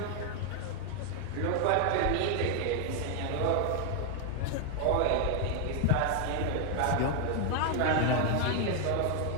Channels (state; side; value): different; both; correlation 0.00